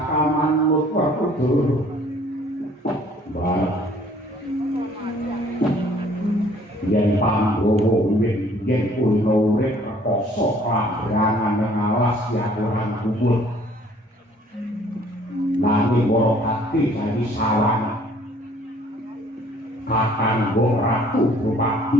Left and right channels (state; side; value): normal; both; correlation 0.57